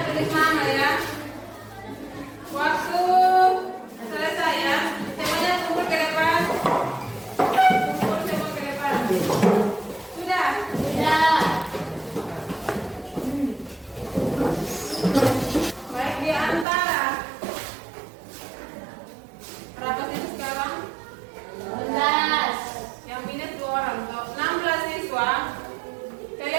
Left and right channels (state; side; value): drops out; left; at 16.7 s